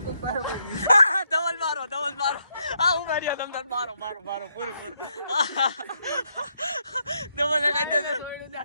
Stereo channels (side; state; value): both; inverted; correlation -0.77